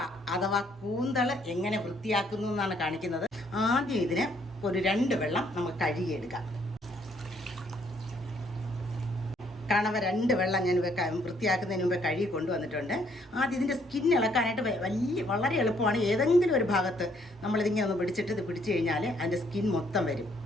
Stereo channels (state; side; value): normal; both; correlation 0.67